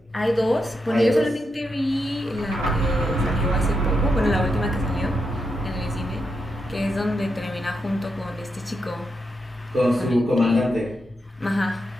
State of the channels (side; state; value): both; normal; correlation 0.84